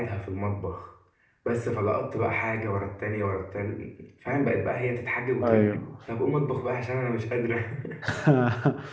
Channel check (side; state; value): both; identical; correlation 1.00